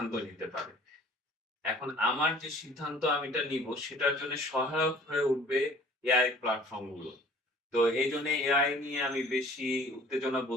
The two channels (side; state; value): both; normal; correlation 0.51